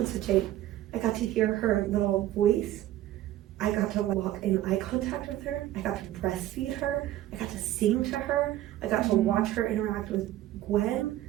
with Jade. I got to hear her little voice. I got to walk in eye contact with her. I got to breastfeed her. I got to sing to her. I got to watch her interact with Gwen.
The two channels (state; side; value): quieter; left; 13.9 dB